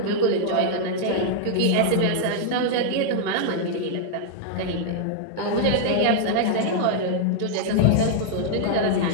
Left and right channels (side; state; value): both; different; correlation -0.01